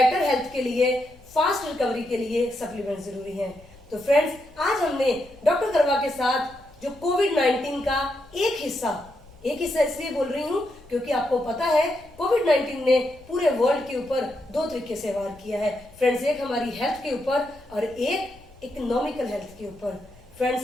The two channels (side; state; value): left; noise; rumble, 24 dB below the sound